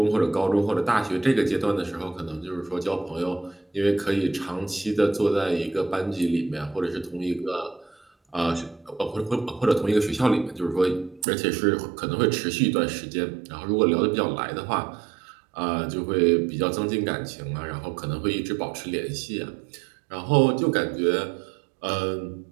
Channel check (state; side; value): drops out; left; at 11.2 s